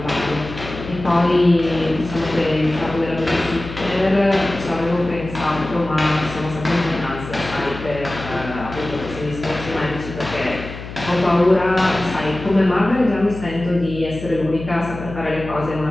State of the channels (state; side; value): noise; left; hum, 11 dB below the sound